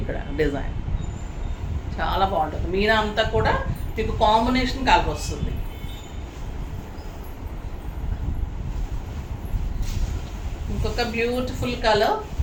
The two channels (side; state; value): both; identical; correlation 1.00